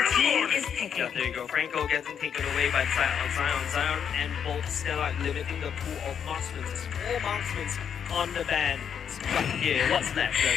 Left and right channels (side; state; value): right; quieter; 7.9 dB